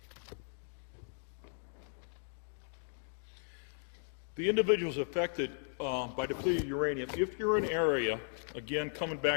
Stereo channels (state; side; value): silent; right; digital silence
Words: The individuals affected by depleted uranium, if you're in an area, again, coming